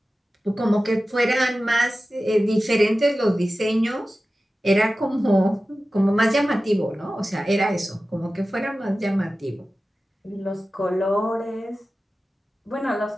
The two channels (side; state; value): both; normal; correlation 0.95